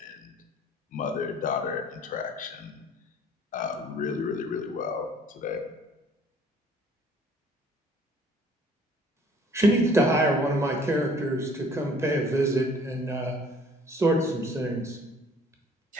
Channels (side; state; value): both; normal; correlation 0.55